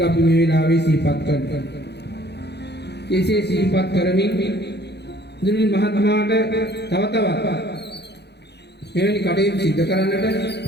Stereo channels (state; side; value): late; right; 0.49 ms